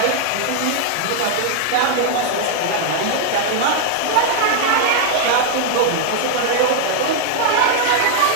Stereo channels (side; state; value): both; different; correlation 0.00